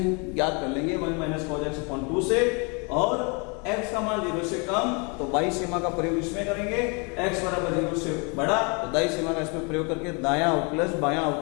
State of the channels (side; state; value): right; quieter; 32.7 dB